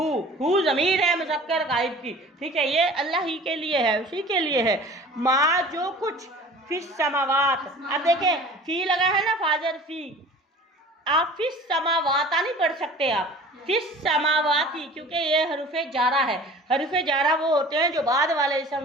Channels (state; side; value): normal; both; correlation 0.43